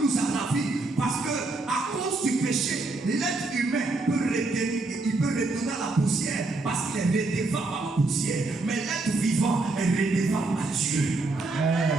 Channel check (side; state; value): left; quieter; 3.3 dB